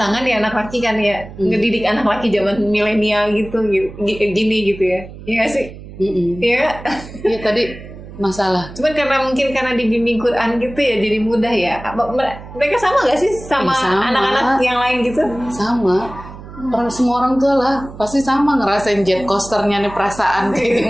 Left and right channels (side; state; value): right; noise; hum, 15 dB below the sound